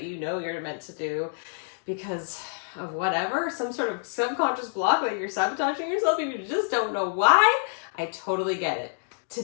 you know you're meant to do because of whatever, some sort of subconscious block that you're sabotaging yourself and you just don't know why. I totally get it.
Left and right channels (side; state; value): right; silent; digital silence